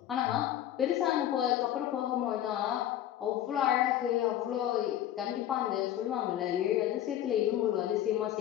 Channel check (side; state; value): right; quieter; 11.8 dB